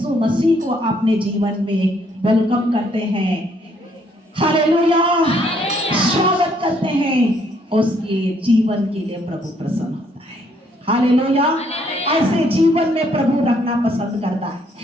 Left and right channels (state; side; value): normal; both; correlation 0.68